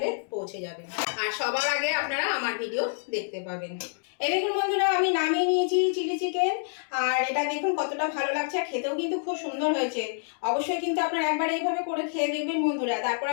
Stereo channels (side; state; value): right; silent; digital silence